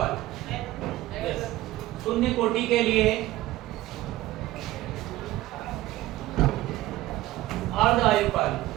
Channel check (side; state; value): left; quieter; 16.7 dB